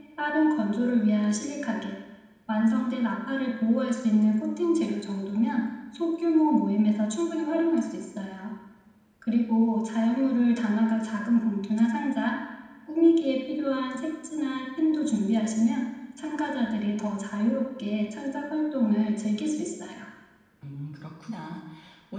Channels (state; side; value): identical; both; correlation 1.00